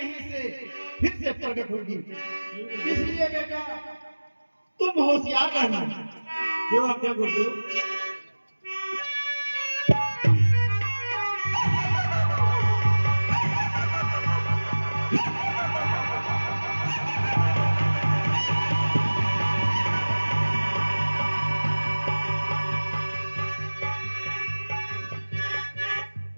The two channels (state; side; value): inverted; both; correlation -1.00